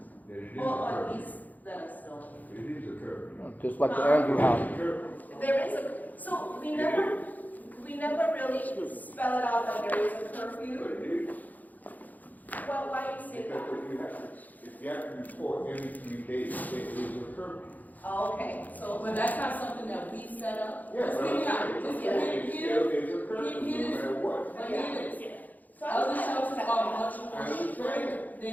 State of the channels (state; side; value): late; right; 0.081 ms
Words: Or at least let us know. It is a curfew. Just like the Andrew House. There is so we never never really spell it out that there is a curfew. Well, why do you say that? If you have to report every 3 days, there is a curfew. Oh, okay, so. But that's not something that we set up. Yes, Let's figure out, let's get there is a curfew, no matter what. But here it is. So Other I shelters understand are that. much more strict